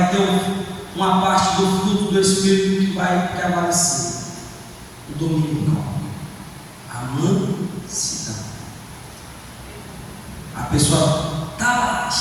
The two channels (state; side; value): identical; both; correlation 1.00